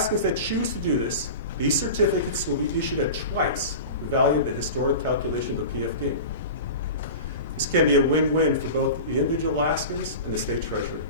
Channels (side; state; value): both; inverted; correlation -0.32